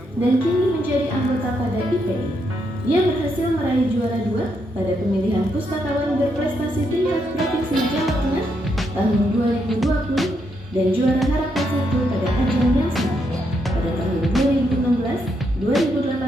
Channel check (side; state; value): both; normal; correlation 0.78